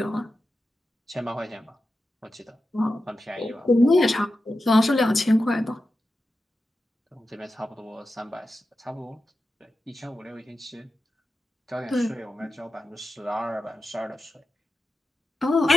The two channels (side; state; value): both; normal; correlation 0.92